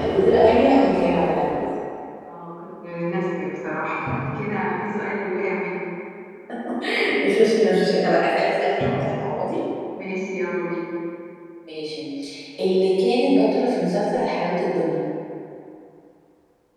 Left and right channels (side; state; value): both; identical; correlation 1.00